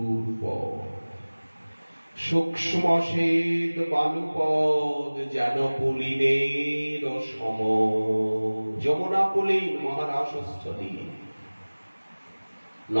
পথ, সূক্ষ্ম শ্বেত বালুপদ যেন পুলিনের সম। যমুনা পুলিন মহারাসস্থলী,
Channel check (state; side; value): inverted; both; correlation -1.00